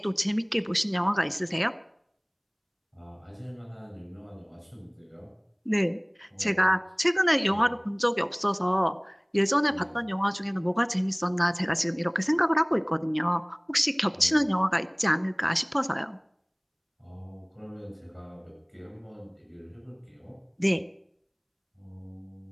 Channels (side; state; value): both; identical; correlation 1.00